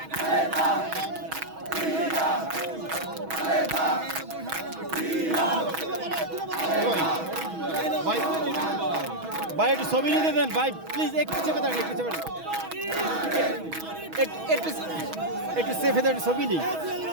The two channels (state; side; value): late; left; 6.2 ms